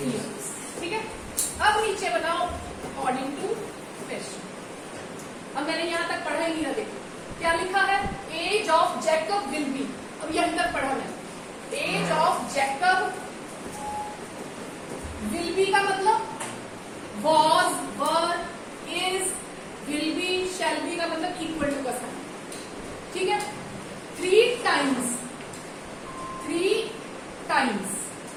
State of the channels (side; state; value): both; identical; correlation 1.00